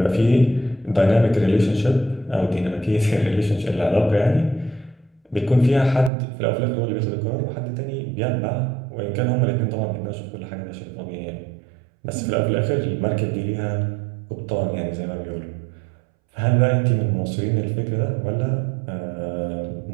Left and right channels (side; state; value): left; drops out; at 6.1 s